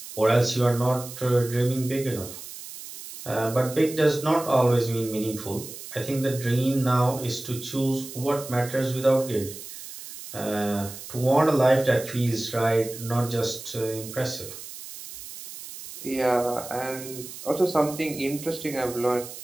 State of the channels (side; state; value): right; noise; hiss, 13 dB below the sound